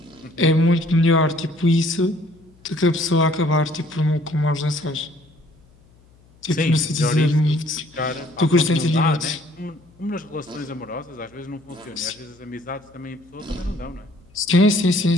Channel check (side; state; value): left; noise; hum, 29 dB below the sound